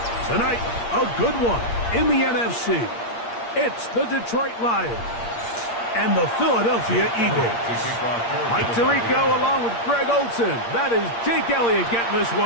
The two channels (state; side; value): late; right; 8.6 ms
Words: Tonight, a good one in the NFC. It's the Detroit Lions and the Philadelphia Eagles. Mike Tirico along with Greg Olson. That is Jake Elliott getting this